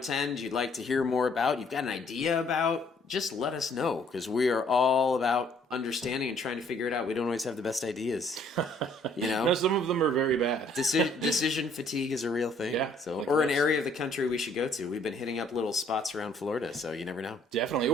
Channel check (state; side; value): normal; both; correlation 0.62